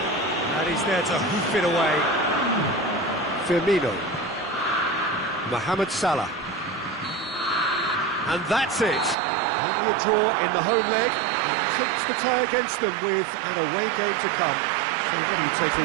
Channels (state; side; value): drops out; left; at 9.2 s